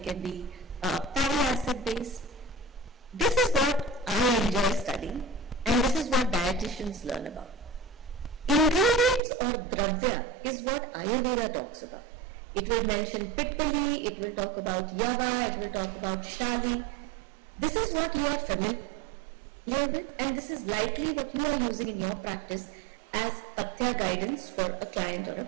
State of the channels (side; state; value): left; drops out; at 9.2 s